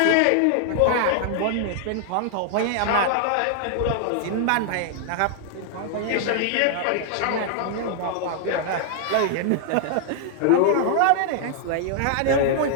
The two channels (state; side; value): different; both; correlation 0.00